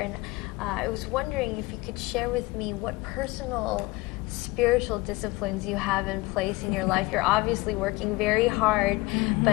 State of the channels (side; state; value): right; quieter; 21.2 dB